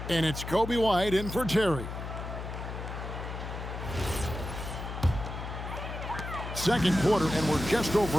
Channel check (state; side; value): noise; left; hum, 7 dB below the sound